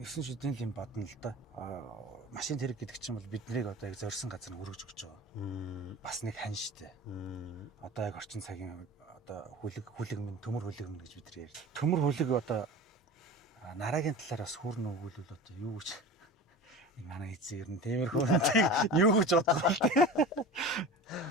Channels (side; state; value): both; normal; correlation 0.34